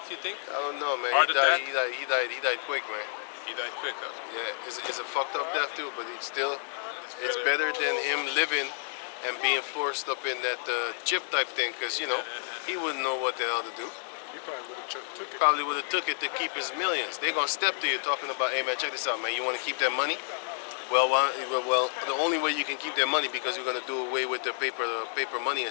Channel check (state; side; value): silent; right; digital silence